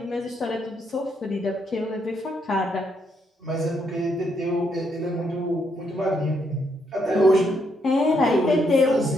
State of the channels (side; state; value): both; normal; correlation 0.76